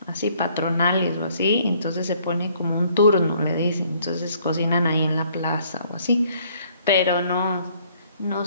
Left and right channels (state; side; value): inverted; both; correlation -0.62